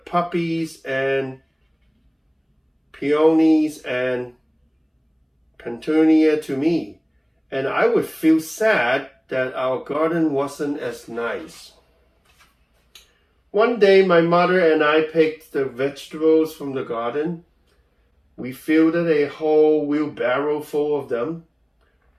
and peonies and petunia to me, and I would feel sad that our garden wasn't as nice. One day, my mother and I picked the vegetables from the garden. We filled a whole wheelbarrow full of them.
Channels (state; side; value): identical; both; correlation 1.00